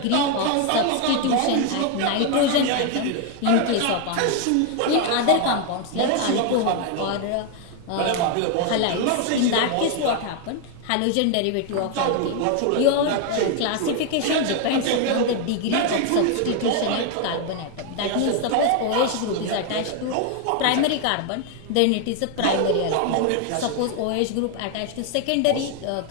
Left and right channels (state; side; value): different; both; correlation 0.01